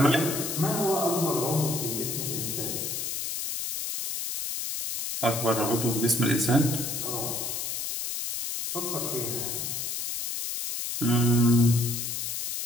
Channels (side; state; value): left; noise; hiss, 3 dB below the sound